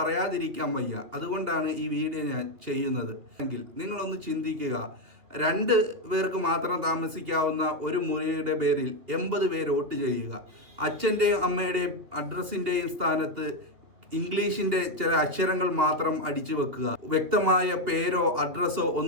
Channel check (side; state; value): left; late; 3.1 ms